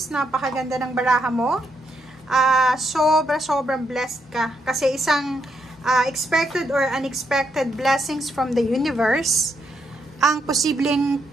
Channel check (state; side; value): normal; both; correlation 0.79